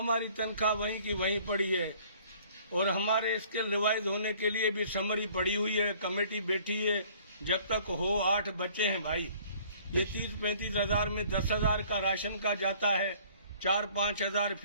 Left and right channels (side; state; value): both; inverted; correlation -0.55